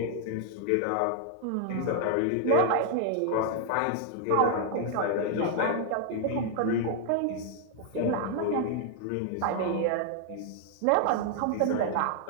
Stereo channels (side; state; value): both; different; correlation 0.00